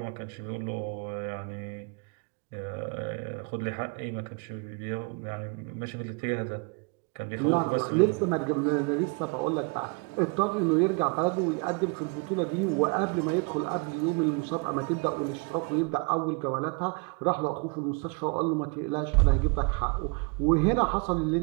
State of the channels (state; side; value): quieter; left; 32.0 dB